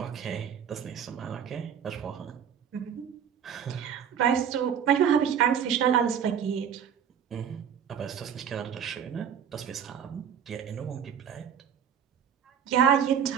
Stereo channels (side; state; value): left; quieter; 8.2 dB